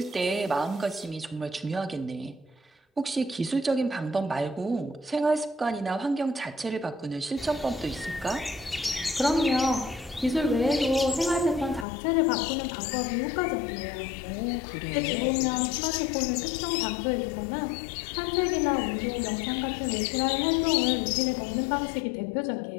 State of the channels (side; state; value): right; drops out; at 11.9 s